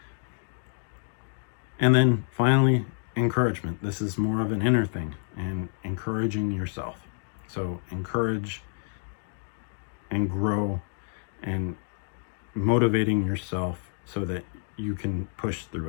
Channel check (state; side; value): silent; right; 59 dB below the other